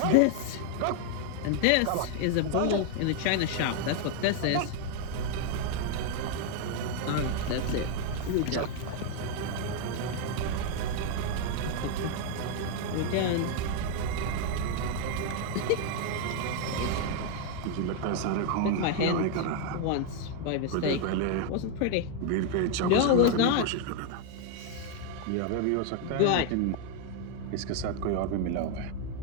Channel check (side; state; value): both; different; correlation 0.00